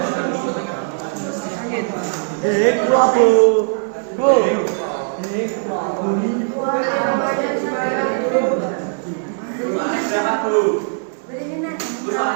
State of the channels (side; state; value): left; silent; 63 dB below the other